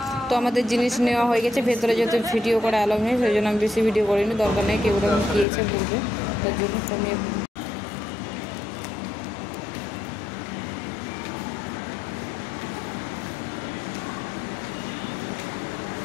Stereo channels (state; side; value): drops out; right; at 5.5 s